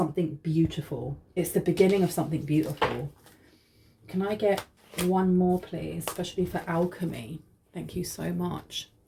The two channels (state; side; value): identical; both; correlation 1.00